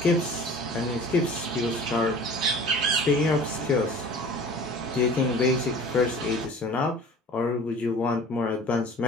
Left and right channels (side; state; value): both; normal; correlation 0.43